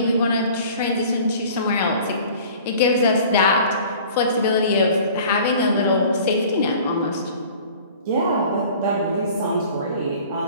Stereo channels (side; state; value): both; inverted; correlation -0.47